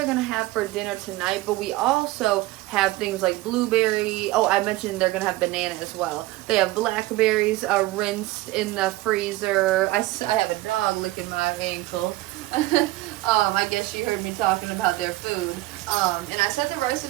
gonna have for dinner tonight. But we also have things like blueberry. Oh, I mentioned they're gonna have banana as well. They have blackberries rinsed in the freezer. I have a dog licking my ankle. I guess you heard me talking about their food. And I set the rice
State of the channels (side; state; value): left; quieter; 18.3 dB